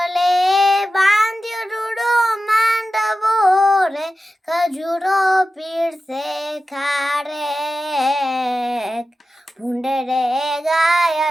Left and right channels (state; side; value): normal; both; correlation 0.93